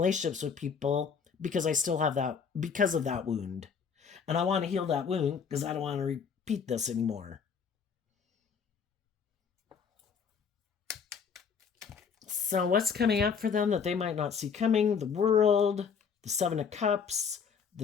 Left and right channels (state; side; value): quieter; right; 6.4 dB